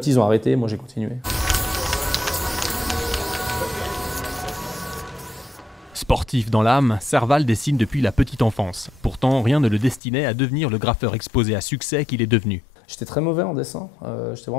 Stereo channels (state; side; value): drops out; right; at 10.0 s